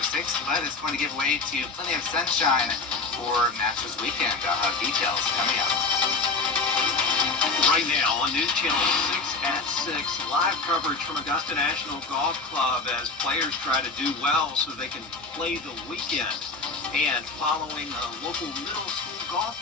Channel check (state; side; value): quieter; right; 4.0 dB